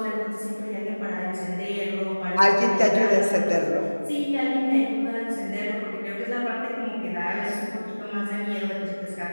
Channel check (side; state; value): both; inverted; correlation -1.00